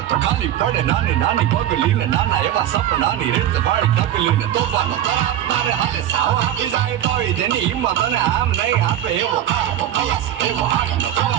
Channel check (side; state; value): left; quieter; 11.7 dB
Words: તો ખાલી પડે નાની નાની પગલીને નાના એવા સપનાની રીત વાળી તકલીને તોફાનો તારે હાથે સાવ આપી જાય તોય તેની હિંમત અને આમ નહીં આપે એવો કારનો ખલાસી એવો હાથનો